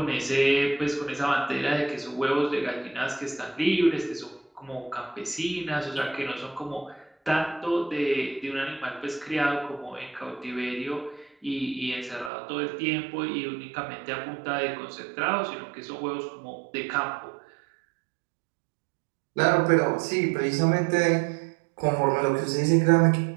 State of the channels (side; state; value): left; drops out; at 12.3 s